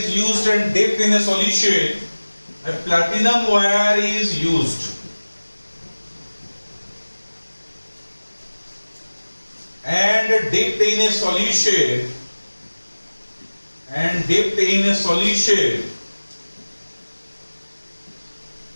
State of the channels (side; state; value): both; inverted; correlation -1.00